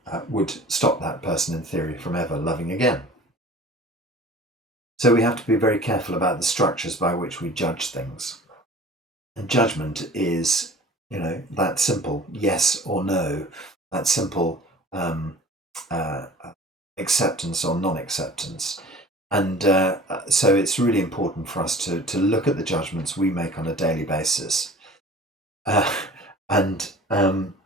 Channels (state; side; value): normal; both; correlation 0.44